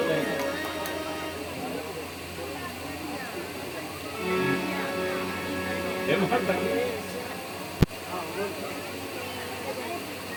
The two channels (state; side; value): identical; both; correlation 1.00